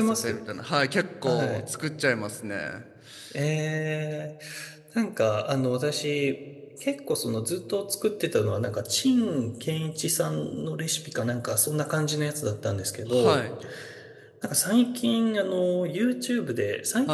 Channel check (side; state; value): both; identical; correlation 1.00